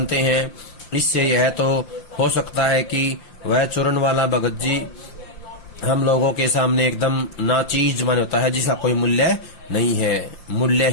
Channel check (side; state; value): right; late; 5.8 ms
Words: हैं। इससे यह तो हो सकता है कि वह चूर्ण वाला भगत जी हम लोगों के सामने एकदम नाचीज माने होता है, जिसका कोई मूल्य नहीं है,